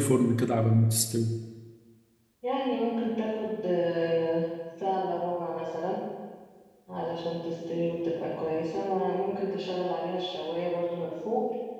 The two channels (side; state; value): both; identical; correlation 1.00